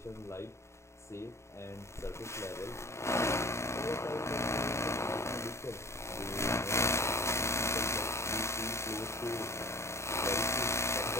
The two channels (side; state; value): right; late; 0.13 ms